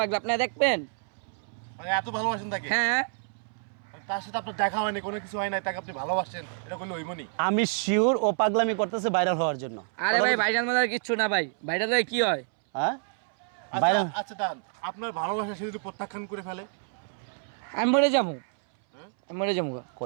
লাগবে, আপনি দেখবেন। মানে এত ভালোবাসেন তাকে? হ্যাঁ, মানে তার সাথে আপনার দেখা হয়নি, কোনো কিছু হয় নাই, তাকে আপনি ভালোবাসেন, এটা করলে হইবনি। আমি শিওর ও পাগলামি করতেছে ভাইরাল হওয়ার জন্য। আরে ভাই ভাইরাল মানে কিচ্ছু না ভাই, ভাইরাল হয়ে কি হয়? হ্যাঁ, আচ্ছা ভাইরাল আচ্ছা দান, আপনার ভালোবাসা সে যদি প্রত্যাখ্যান করে ফেলে? আমি মরে যাবো, হ্যাঁ, আমি মরে যাবো গা।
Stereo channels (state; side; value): silent; left; 59 dB below the other